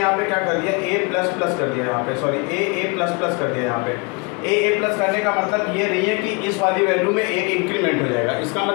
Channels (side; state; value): right; quieter; 30.4 dB